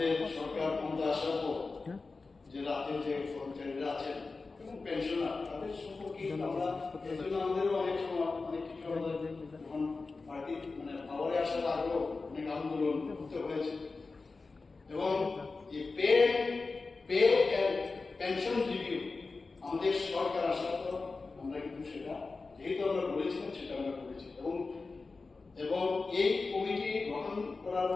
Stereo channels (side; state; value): right; quieter; 4.0 dB